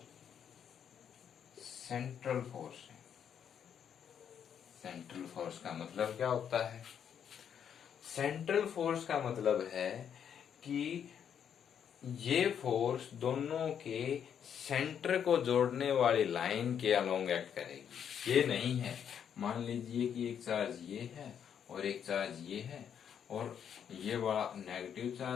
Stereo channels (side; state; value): right; quieter; 8.4 dB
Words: सेंट्रल फोर्स है। सेंट्रल फोर्स का मतलब क्या होता है? सेंट्रल फोर्स का मतलब है कि ये फोर्स दोनों के सेंटर को जोड़ने वाली लाइन के अलोंग एक्ट करेगी। ये नहीं है, मान लीजिए कि एक चार्ज ये है और एक चार्ज ये है और ये वाला नेगेटिव